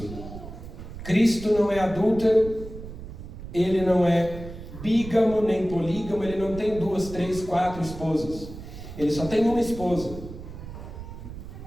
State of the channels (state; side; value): noise; right; rumble, 12 dB below the sound